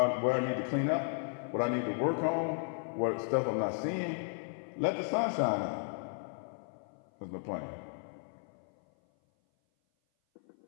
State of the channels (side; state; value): right; silent; 55 dB below the other